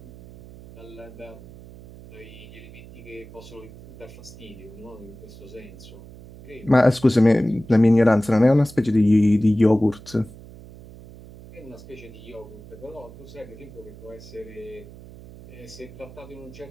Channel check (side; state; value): right; noise; hum, 18 dB below the sound